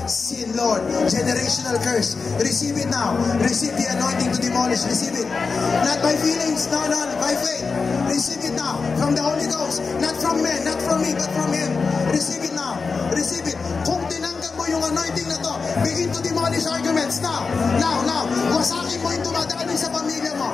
sin, Lord, generational curse. Receive it now. Receive the anointing to demolish. Receive it. Not by feelings, no, by faith. Receive it now from the Holy Ghost. Not from men, not from me, but from Him. Receive it now. Receive it. Kung tinanggap mo yung anointing na to, begin to demolish arguments now. Now. Wasakin mo yung dumadali sa pamilya mo.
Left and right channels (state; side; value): quieter; right; 4.7 dB